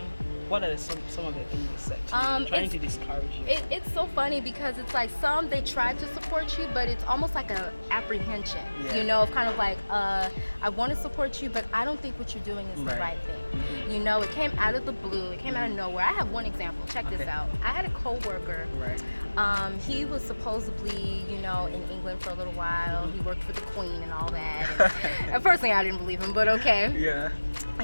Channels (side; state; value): both; inverted; correlation -1.00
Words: what are some of the things they said to you, trying to discourage you? It's so funny because it's like they try to support you, but it's almost like an apprehension, of kind of like, I want to support you, but I don't think what you're doing is the right thing. It came out of the blue, it came out of nowhere. I have one example, check this out. I had a co-worker, he was supposedly, in England for a little while. He worked for the Queen and all that. And personally, I didn't believe him, but okay. Yeah.